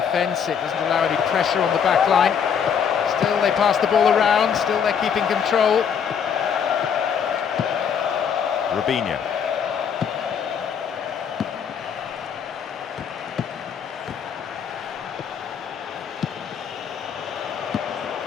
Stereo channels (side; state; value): right; quieter; 7.5 dB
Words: It doesn't allow any pressure on the back line. Still they pass the ball around, still they're keeping control. Robinho.